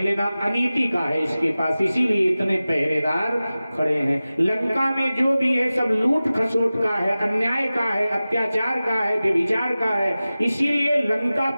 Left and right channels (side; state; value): both; inverted; correlation -0.96